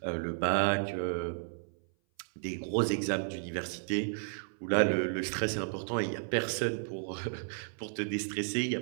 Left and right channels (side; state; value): left; silent; 56 dB below the other